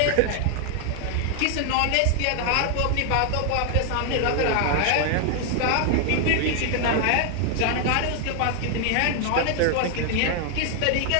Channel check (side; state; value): both; different; correlation 0.00